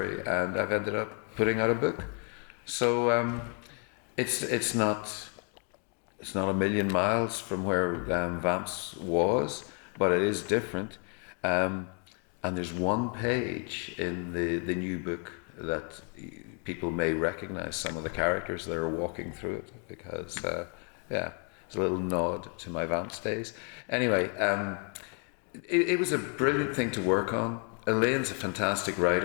and I've ended up putting out a book. So it's not a million miles from where Vamps was, but it is different. And there's one page in the new book that people may recognize some of the characters that are walking through it, because it's a little nod to my Vamps days. Anyway, it was a brilliant thing to work on. Elaine's a fantastic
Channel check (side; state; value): right; quieter; 39.7 dB